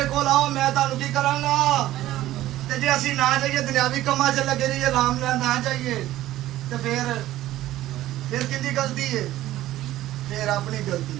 ਕੋਲ ਆਓ ਮੈਂ ਤੁਹਾਨੂੰ ਕੀ ਕਰਾਂਗਾ ਤੇ ਜੇ ਅਸੀਂ ਨਾ ਜਾਈਏ ਦੁਨਿਆਵੀ ਕੰਮਾਂ 'ਚ ਲੱਗੇ ਰਹੀਏ ਆਰਾਮ ਨਾਲ ਨਾ ਜਾਈਏ ਤੇ ਫਿਰ ਕਿੰਦੀ ਗਲਤੀ ਹੈ ਫਿਰ ਆਪਣੀ ਗਲਤੀ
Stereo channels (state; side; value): quieter; left; 14.8 dB